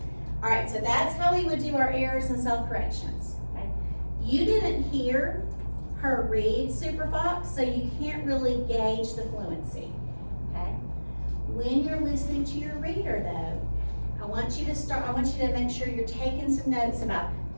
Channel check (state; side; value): inverted; both; correlation -1.00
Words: All right, so that's how we would do our errors and self-corrections, okay? You didn't hear her read Super Fox, so you can't really gauge the fluency, okay? When you're listening to your reader though, I want you to make sure you're taking some notes about,